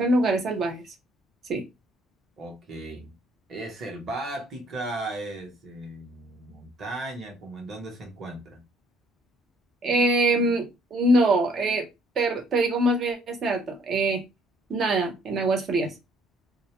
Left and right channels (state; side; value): normal; both; correlation 0.63